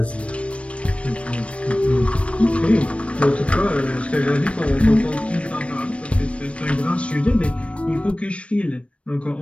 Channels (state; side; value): late; right; 0.062 ms